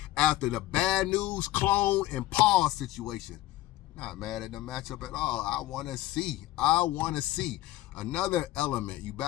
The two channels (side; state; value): right; quieter; 15.7 dB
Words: after the bad news, clone, and Paul situation. Not mad at the matchup at all. I want to see another element. You